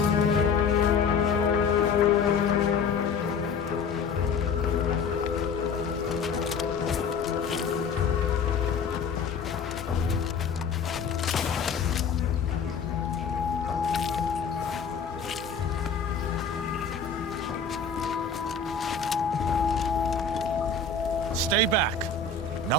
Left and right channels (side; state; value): right; quieter; 5.5 dB